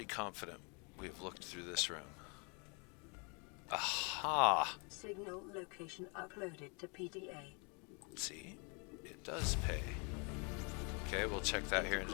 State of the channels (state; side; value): quieter; right; 34.0 dB